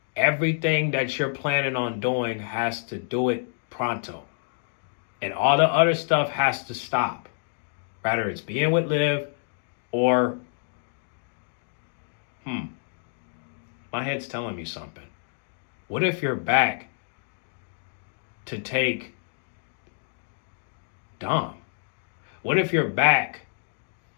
everything that you're planning on doing has to do it pronto. And all the other stuff has to stop. Whether it's being with Liv or, my head's telling me something. What if you're back to take Dom? What if you're back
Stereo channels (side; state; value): right; silent; digital silence